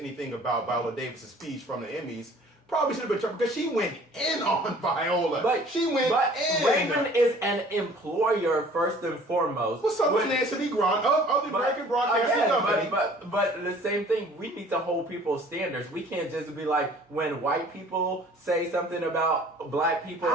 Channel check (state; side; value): normal; both; correlation 0.51